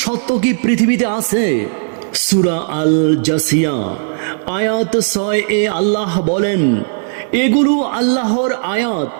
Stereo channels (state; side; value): silent; left; digital silence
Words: সত্য কি পৃথিবীতে আছে? সূরা আল জাসিয়া আয়াত 6 আল্লাহ বলেন, এগুলো আল্লাহর আয়াত